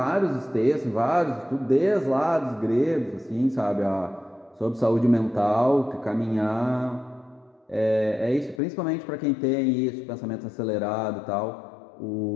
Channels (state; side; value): drops out; right; at 8.6 s